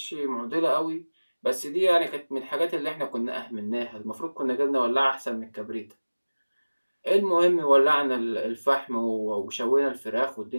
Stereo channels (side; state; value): both; inverted; correlation -1.00